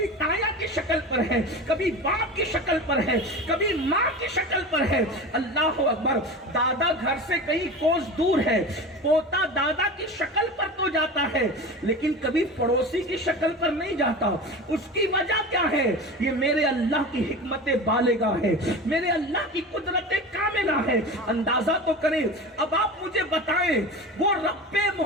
تایا کی شکل پر ہے، کبھی باپ کی شکل پر ہے، کبھی ماں کی شکل پر ہے۔ اللہ اکبر، دادا گھر سے کہیں کوس دور ہے، پوتا دادا کی شکل پر تو جاتا ہے لیکن کبھی پڑوسی کی شکل پر نہیں جاتا۔ اس کی وجہ کیا ہے؟ یہ میرے اللہ کی حکمت بالغہ ہے، میرے اللہ کی قدرت کاملہ ہے۔ اندازہ تو کریں، اب آپ مجھے بتائیں، وہ رب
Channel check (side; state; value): both; normal; correlation 0.31